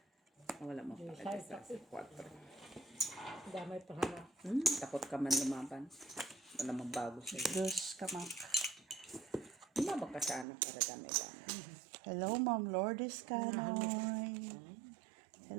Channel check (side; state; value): left; drops out; at 10.5 s